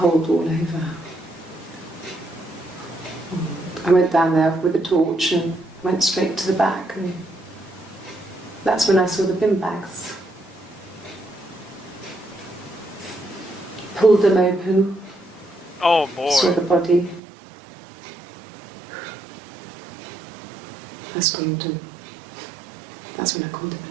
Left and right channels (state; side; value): drops out; left; at 17.2 s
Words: all over. I went down there with a torch and went straight to the back, and that's when I saw the bin bags. Pulled them open. Oh boy. Saw the body. I screamed, and that's when I called the